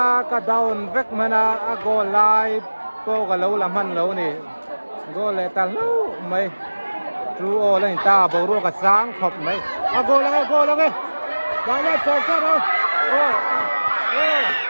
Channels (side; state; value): both; inverted; correlation -1.00